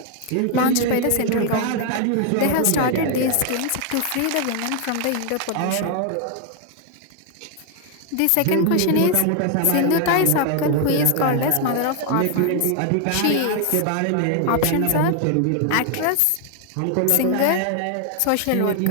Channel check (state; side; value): different; both; correlation 0.00